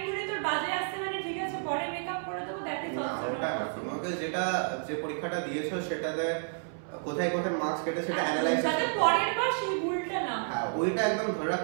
ধরে তোর বাজে আসছে মানে ঠিক আছে পরে মেকআপ করে দেবো, দ্যাট ইজ অলসো নট। তোমাকে যে পরীক্ষাটা দিয়েছো সেটাতে কোথায় কোথায় মার্কস কেটে সেটা অ্যানালাইজ যাতে পরের বার সেই ভুলটা না হয়। হ্যাঁ, ওইটা একদম ধরে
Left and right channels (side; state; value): left; silent; 57 dB below the other